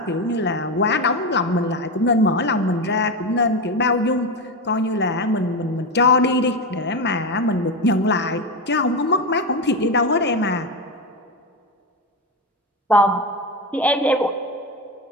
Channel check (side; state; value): both; normal; correlation 0.15